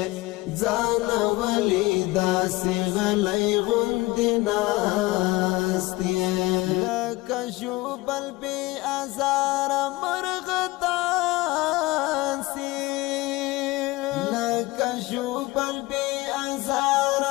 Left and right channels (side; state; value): right; quieter; 20.7 dB